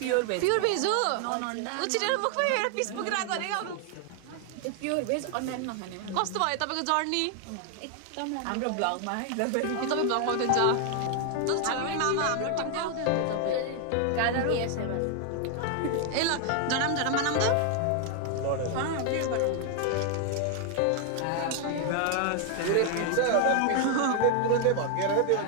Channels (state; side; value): different; both; correlation 0.00